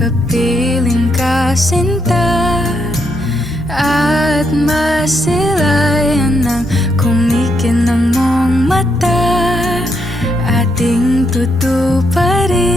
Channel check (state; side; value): normal; both; correlation 0.78